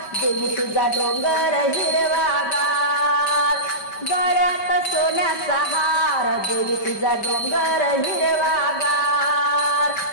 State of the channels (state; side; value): late; right; 5.2 ms